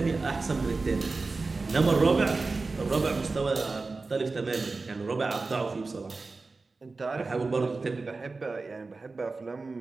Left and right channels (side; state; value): left; quieter; 3.8 dB